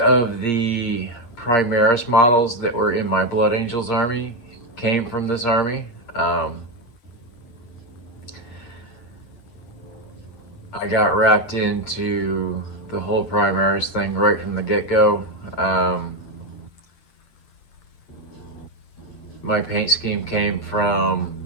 the Primaris models that were in my Blood Angels army came from this army. I got wrapped into the whole Primaris thing right from the get-go. My paint scheme came from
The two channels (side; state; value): right; late; 8.6 ms